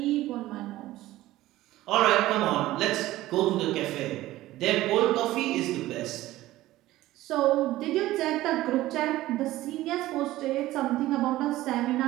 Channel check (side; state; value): left; quieter; 16.2 dB